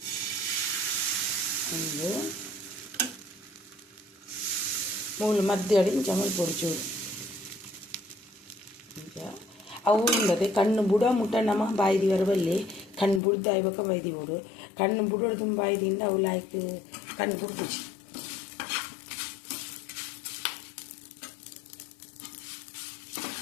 ಒಂದು ಮೂಲು ಮಧ್ಯ ಇಂಚ ಮೈ ಪೊಡ್ಚೂರು ಅವು ಇಲ್ಲದೆ ಕಣ್ಣು ಬುಡ ಮುಟ್ಟ ನಮ್ಮ ಬಾಯಿದಿ ವರಬಲ್ಲಿ ಕಣ್ಣು ಬುಡ್ದು ಆಯ್ಬೇಕ ಬೈದಿ ಬಿಡು ಕಣ್ಣು ಬುಡೋಡು ತುಂಬ ಬೈದಿಂದ ಅವು ಲಾಯ್ಕ್ ಕಣ್ಣು ಬುಡ್ದು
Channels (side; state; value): right; drops out; at 13.2 s